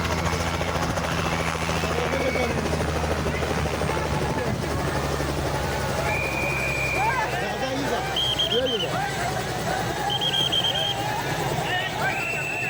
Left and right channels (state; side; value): identical; both; correlation 1.00